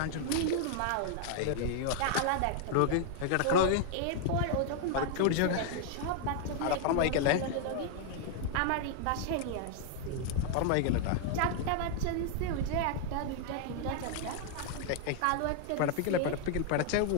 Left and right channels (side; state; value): both; different; correlation 0.00